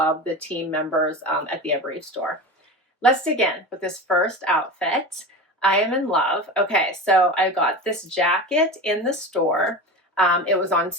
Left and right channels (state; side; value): normal; both; correlation 0.28